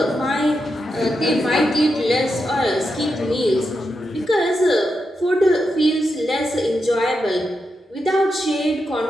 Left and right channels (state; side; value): normal; both; correlation 0.86